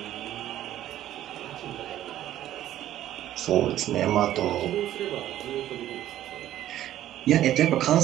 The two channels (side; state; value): left; quieter; 12.7 dB